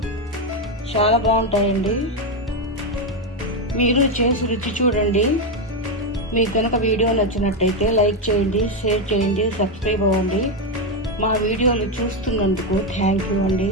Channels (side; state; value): both; normal; correlation 0.07